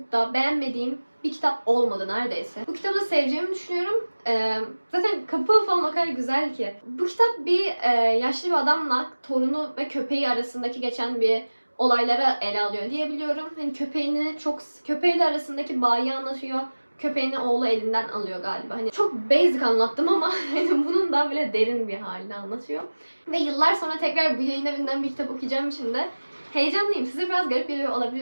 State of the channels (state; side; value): inverted; both; correlation -1.00